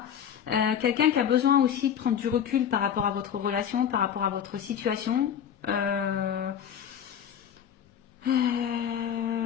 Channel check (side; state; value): right; quieter; 8.8 dB